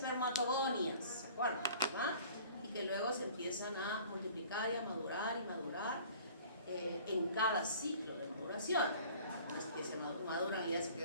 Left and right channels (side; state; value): both; inverted; correlation -0.49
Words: ¿se acuerdan? ¿Verdad? Y que luego se empiezan a multiplicar y a madurar en cada ciclo de maduración. No es que se maduran y ya se